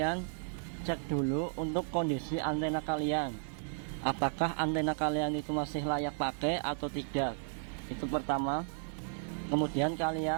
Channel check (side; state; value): left; silent; digital silence